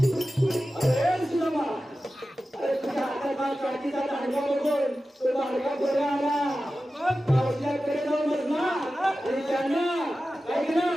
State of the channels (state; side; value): normal; both; correlation 0.94